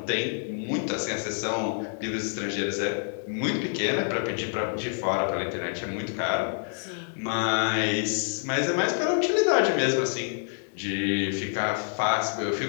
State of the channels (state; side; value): silent; right; 60 dB below the other